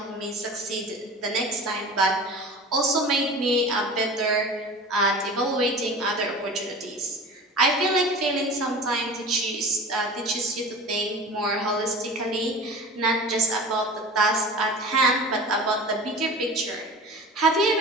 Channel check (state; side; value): normal; both; correlation 0.37